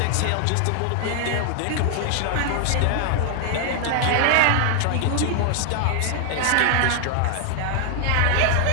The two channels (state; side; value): different; both; correlation 0.00